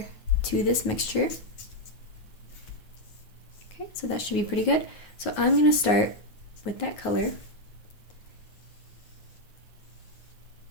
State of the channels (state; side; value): late; right; 9.4 ms